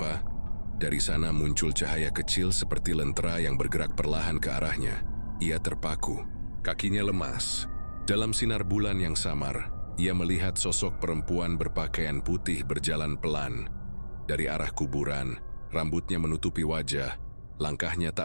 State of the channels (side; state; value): both; inverted; correlation -1.00